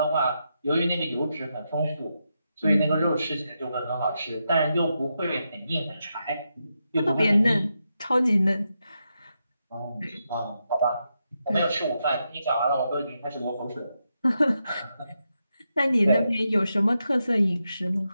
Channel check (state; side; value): inverted; both; correlation -0.85